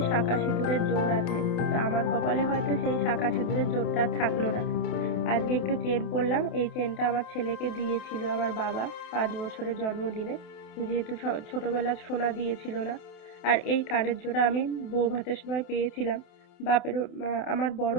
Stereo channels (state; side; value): late; right; 28 ms